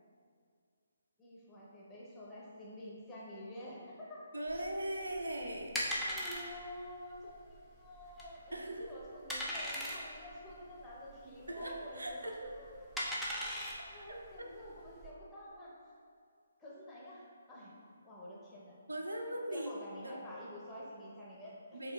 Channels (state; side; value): inverted; both; correlation -0.69